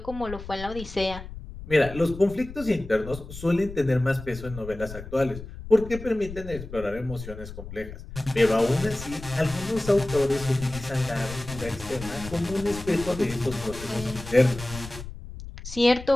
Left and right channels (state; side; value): noise; left; rumble, 12 dB below the sound